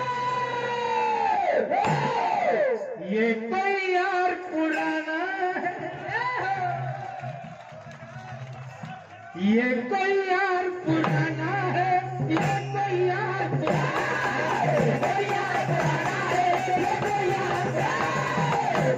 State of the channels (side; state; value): both; identical; correlation 1.00